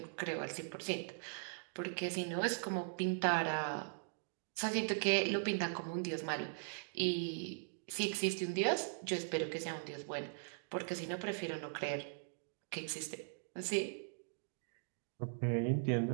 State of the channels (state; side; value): silent; left; digital silence